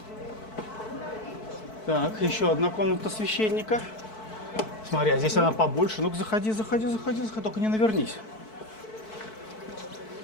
Так, еще одна комната священника. Смотри, а здесь она побольше. Ну-ка, заходи, только не навернись.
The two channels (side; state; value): right; late; 4.6 ms